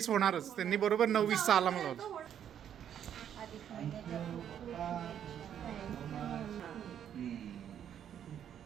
होणारच. त्यांनी बरोबर 9:20 अलार्म लावला.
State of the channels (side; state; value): left; quieter; 9.4 dB